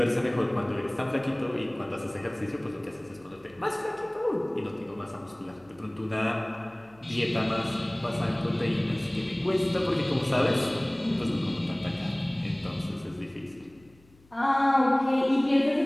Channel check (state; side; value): noise; left; hum, 29 dB below the sound